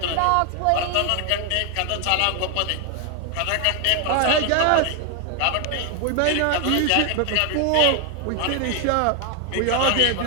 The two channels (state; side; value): different; both; correlation 0.01